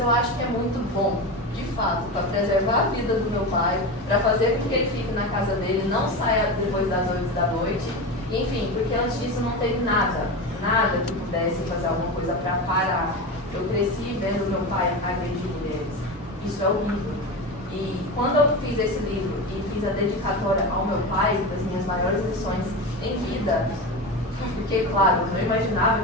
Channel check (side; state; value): both; normal; correlation 0.23